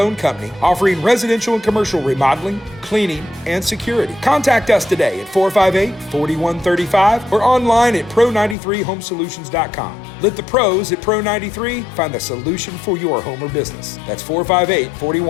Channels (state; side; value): drops out; right; at 8.6 s